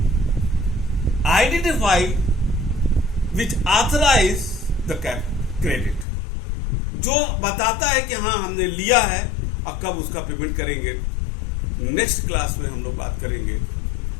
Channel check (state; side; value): drops out; right; at 6.1 s